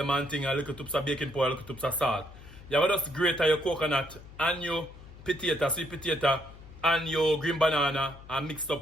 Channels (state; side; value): noise; left; hum, 18 dB below the sound